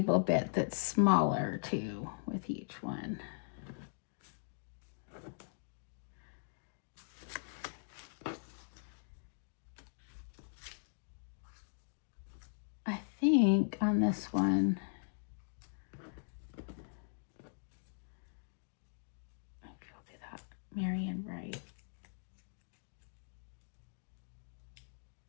bit that's smaller too with each one. I think on this one, I'll do that, Marion Wright.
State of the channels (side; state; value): right; silent; digital silence